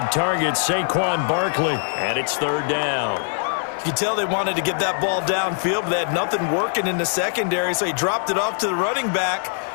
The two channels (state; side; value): silent; right; digital silence